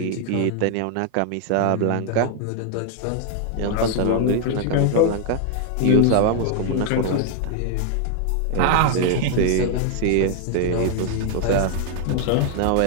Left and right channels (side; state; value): both; different; correlation 0.00